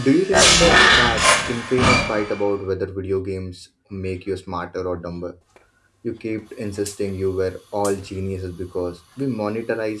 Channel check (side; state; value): both; identical; correlation 1.00